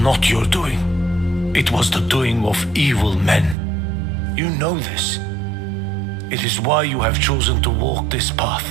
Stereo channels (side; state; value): left; drops out; at 3.6 s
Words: not your doing. It was the doing of evil men. You know this. It is why you have chosen to walk this